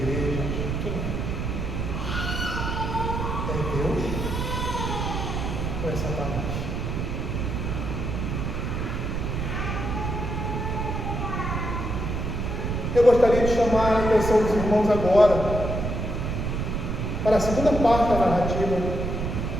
Quem é? É Deus ou é Satanás? Eu gostaria de chamar a atenção dos irmãos agora para a segunda parte da narrativa,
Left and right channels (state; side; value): noise; right; rumble, 2 dB below the sound